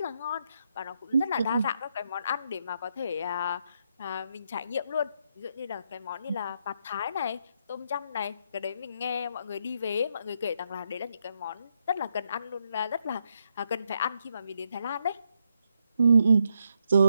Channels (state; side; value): inverted; both; correlation -0.78